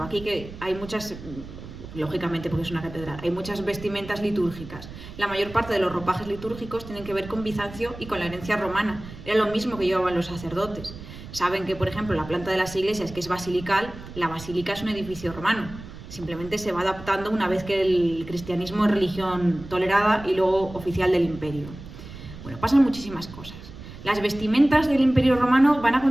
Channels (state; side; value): noise; right; rumble, 14 dB below the sound